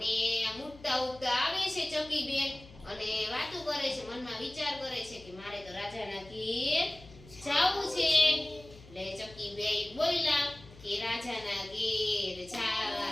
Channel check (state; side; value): noise; left; hum, 20 dB below the sound